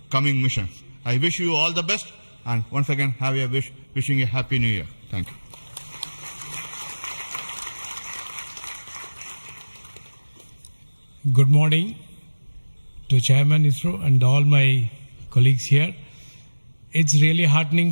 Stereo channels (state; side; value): inverted; both; correlation -1.00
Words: coming missions. I wish you all the best, and once again wishing a happy new year. Thank you. Good morning to Chairman ISRO and all my colleagues here. It's really heartening